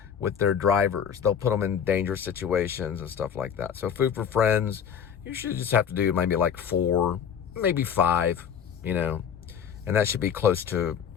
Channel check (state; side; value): quieter; right; 7.9 dB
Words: with their drivers. They'll put them in dangerous situations and stuff like that. So Food for Friends, you should just have to do maybe like 4, maybe 5, you know, and that should be close to